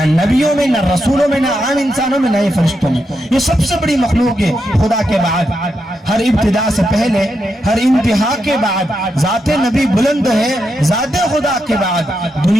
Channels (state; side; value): normal; both; correlation 0.84